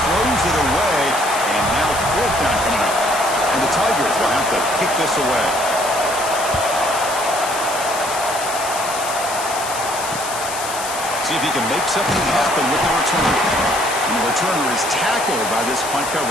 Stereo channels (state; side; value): noise; left; hiss, 8 dB below the sound